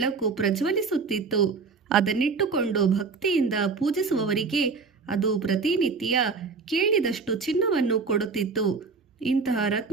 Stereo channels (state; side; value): quieter; left; 4.8 dB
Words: ಪ್ರಜ್ವಲಿಸುತ್ತಿತ್ತು. ಅದನ್ನಿಟ್ಟುಕೊಂಡು ಭಕ್ತಿಯಿಂದ ಪೂಜಿಸುವವರಿಗೆ ಅದು ಪ್ರತಿನಿತ್ಯ ಕೇಳಿದಷ್ಟು ಚಿನ್ನವನ್ನು ಕೊಡುತ್ತಿತ್ತು. ಇಂತಹ